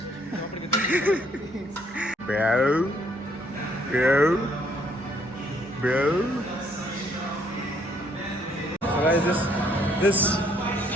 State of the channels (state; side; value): normal; both; correlation 0.67